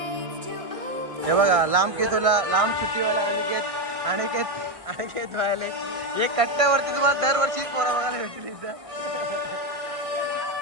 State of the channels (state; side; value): late; left; 1.6 ms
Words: हे बघा लांब सुट्टीवाला अनिकेत व्हायला हे कट्ट्यावरती तुम्हाला दरवर्षी पोरा बघायला भेटतील इथं.